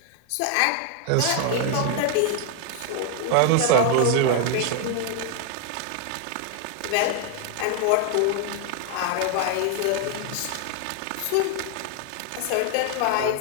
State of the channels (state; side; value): different; both; correlation 0.00